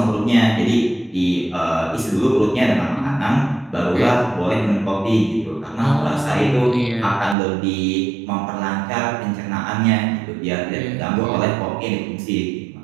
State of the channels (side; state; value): left; drops out; at 7.4 s